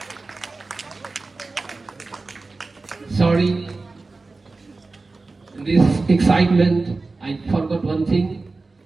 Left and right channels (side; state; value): left; quieter; 3.6 dB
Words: Sorry, in this excitement, I forgot one thing.